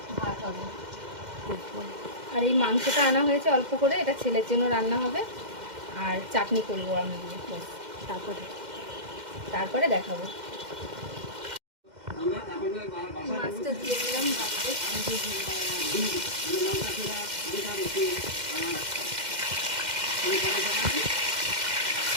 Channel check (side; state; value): left; late; 2.1 ms